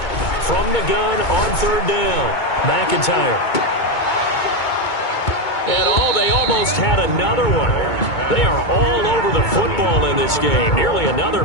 from the gun on 3rd down. McIntyre. And they almost had another one. They are all over the football in this game. Nearly another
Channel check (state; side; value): late; right; 2.2 ms